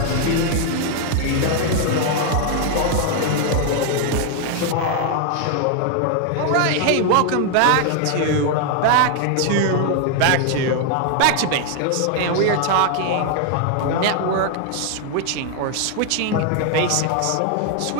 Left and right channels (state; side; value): different; both; correlation 0.01